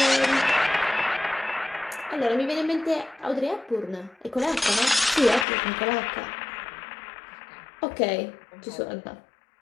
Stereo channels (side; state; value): right; drops out; at 5.5 s